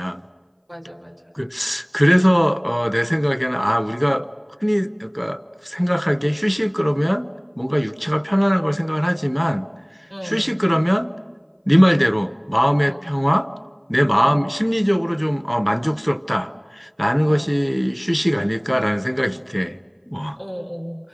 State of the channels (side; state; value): both; identical; correlation 1.00